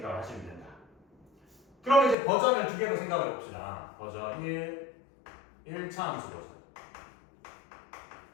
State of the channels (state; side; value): drops out; right; at 2.1 s